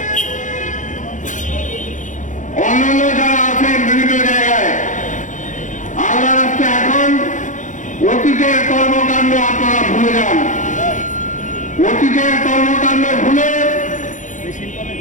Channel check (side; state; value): right; late; 0.36 ms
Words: অন্যান্য যারা আছেন বিভিন্ন জায়গায়, আল্লাহ রাস্তা এখন অতীতের কর্মকাণ্ড আপনারা ভুলে যান। অতীতের কর্মকাণ্ড ভুলে